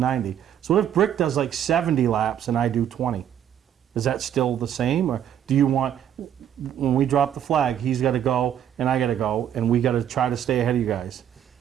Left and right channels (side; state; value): left; quieter; 9.9 dB